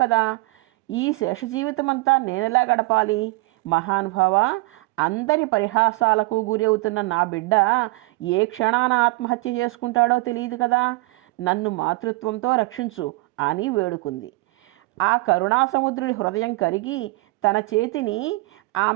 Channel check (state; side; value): quieter; left; 23.3 dB